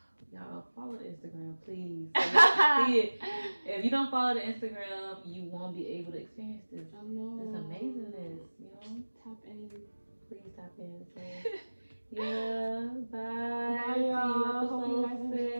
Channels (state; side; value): inverted; both; correlation -1.00